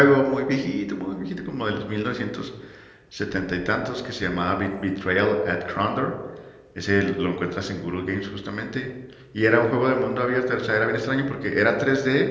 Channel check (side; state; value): both; identical; correlation 1.00